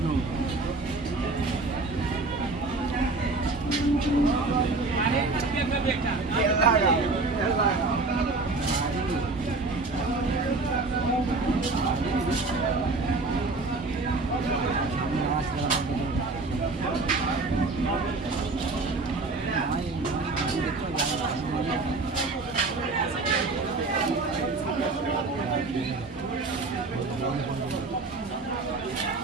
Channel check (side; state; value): left; quieter; 3.6 dB